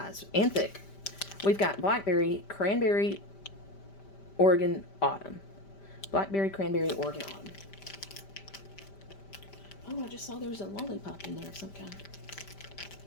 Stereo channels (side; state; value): right; late; 5.1 ms